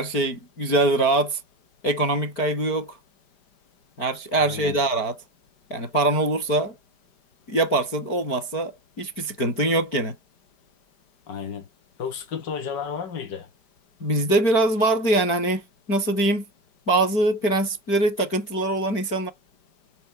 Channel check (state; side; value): late; right; 5.0 ms